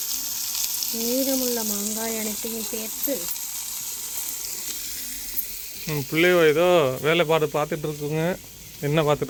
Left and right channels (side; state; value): both; identical; correlation 1.00